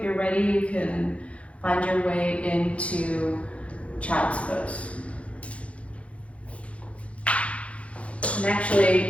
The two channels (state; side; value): late; right; 0.063 ms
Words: you're ready, you can find your way into child's pose. And